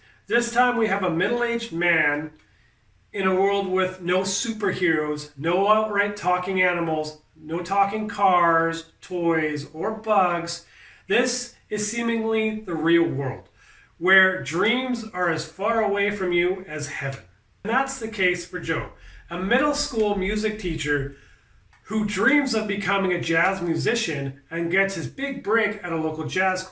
This time we have a middle-aged man in a world with no superheroes, no outright talking animals, no talking cars, toys, or bugs. This is seemingly the real world, where dreams are as far away from you as heaven. And that's the case for Joe, a middle school music teacher who dreams of becoming a jazz musician and gets his big break at a local jazz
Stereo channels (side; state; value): both; identical; correlation 1.00